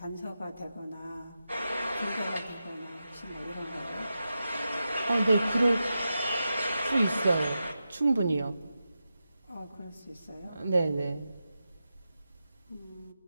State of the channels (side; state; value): both; inverted; correlation -0.91